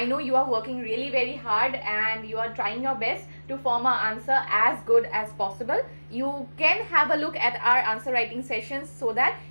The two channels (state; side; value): inverted; both; correlation -1.00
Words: know you are working really very hard and you are trying your best to form an answer as good as possible. You can have a look at our answer writing sessions so that